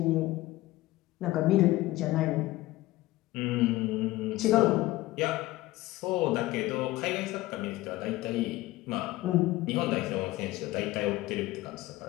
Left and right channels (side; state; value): right; quieter; 17.7 dB